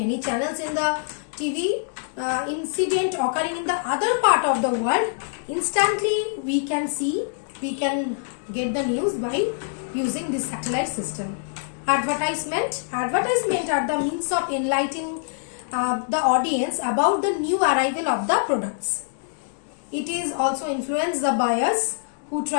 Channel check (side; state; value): right; silent; digital silence